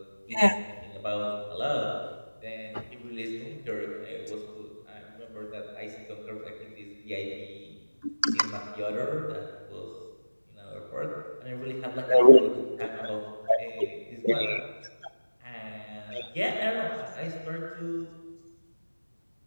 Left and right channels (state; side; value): inverted; both; correlation -1.00